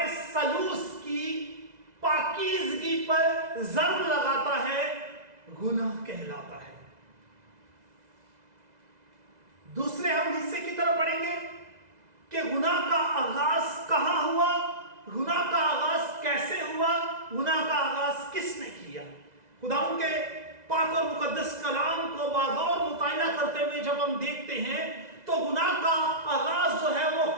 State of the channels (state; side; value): late; left; 2.0 ms